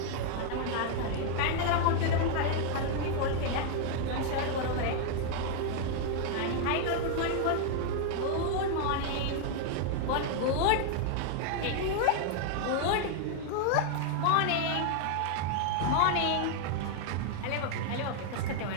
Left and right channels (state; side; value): different; both; correlation 0.00